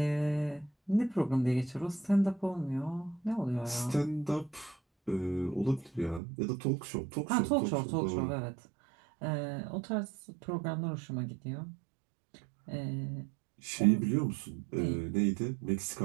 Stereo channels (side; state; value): left; drops out; at 6.2 s